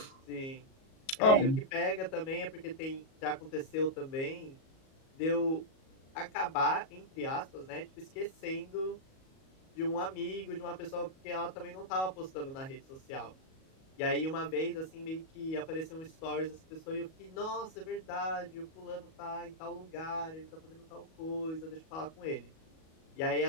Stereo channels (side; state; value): right; late; 37 ms